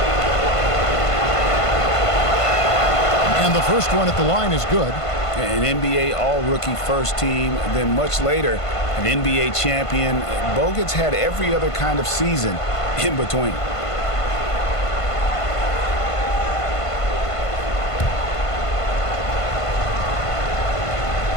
And the first one at the line is good. An NBA all-rookie first team, then much later, an NBA champion. Bogut's had every other kind of season in between.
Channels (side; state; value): right; late; 1.5 ms